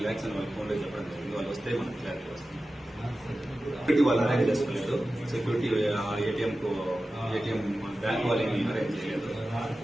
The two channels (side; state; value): both; normal; correlation 0.94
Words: lakhs అని వాళ్ళ ఫోన్లో చెప్పడం జరిగింది. వాళ్ళు వస్తే మనకు క్లారిటీ వస్తుంది. సెక్యూరిటీ వాళ్ళు అరేంజ్ చేసుకోలేదు. సెక్యూరిటీ ఏటీఎం బ్యాంక్ వాళ్ళు ఏమి అరేంజ్ చేయలేదు.